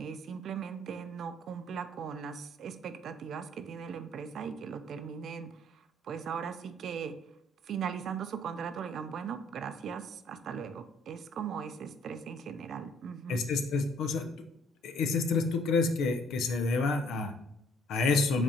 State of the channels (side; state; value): both; normal; correlation 0.61